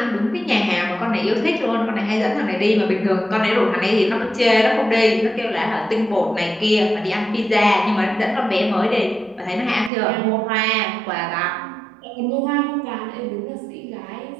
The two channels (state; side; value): drops out; left; at 9.9 s